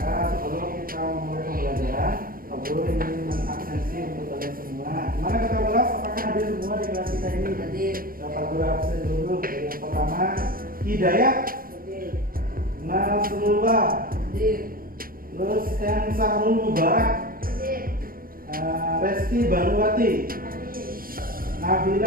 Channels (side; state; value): left; late; 0.42 ms